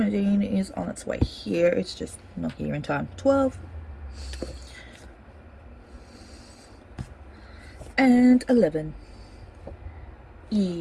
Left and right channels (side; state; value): both; identical; correlation 1.00